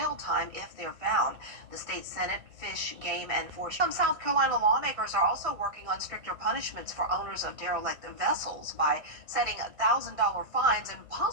time if they're found. The state Senate Fish, Game, and Forestry. Some South Carolina lawmakers are also working on stricter punishments for owners of derelict vessels by setting $1,000 fines and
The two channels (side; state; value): left; late; 1.6 ms